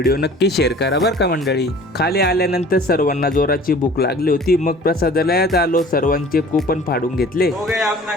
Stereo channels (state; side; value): normal; both; correlation 0.47